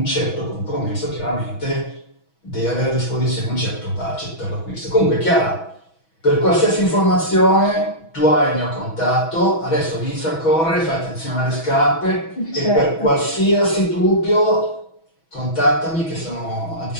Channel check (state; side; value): late; right; 6.2 ms